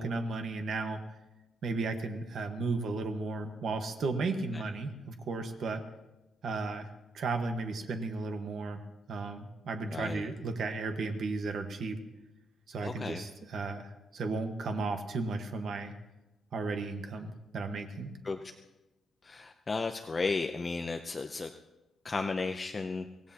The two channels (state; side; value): normal; both; correlation 0.79